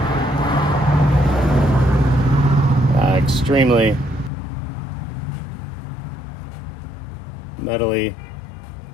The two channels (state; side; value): drops out; right; at 4.3 s